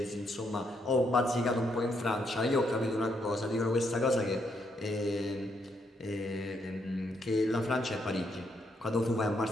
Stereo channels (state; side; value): normal; both; correlation 0.76